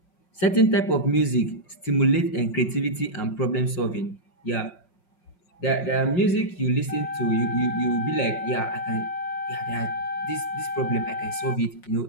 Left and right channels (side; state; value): right; late; 5.6 ms